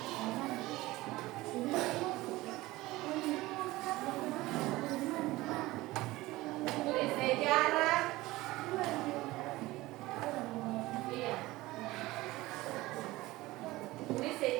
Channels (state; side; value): quieter; left; 18.9 dB